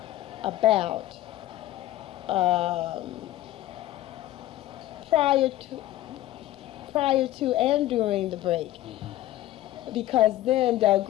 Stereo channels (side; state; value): right; quieter; 14.5 dB